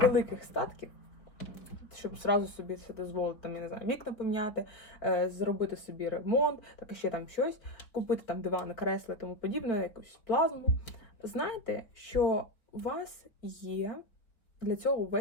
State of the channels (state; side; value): late; right; 4.2 ms